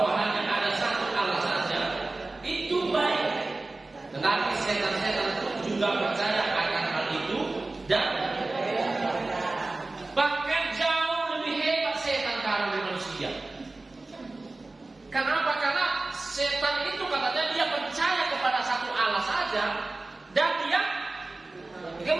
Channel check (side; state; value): left; quieter; 3.2 dB